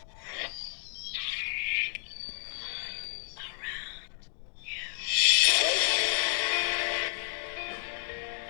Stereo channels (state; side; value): silent; right; digital silence